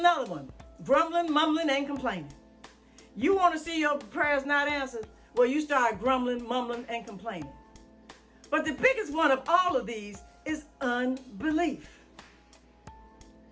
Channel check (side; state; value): both; identical; correlation 1.00